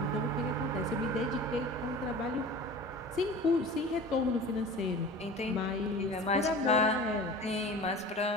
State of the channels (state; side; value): normal; both; correlation 0.38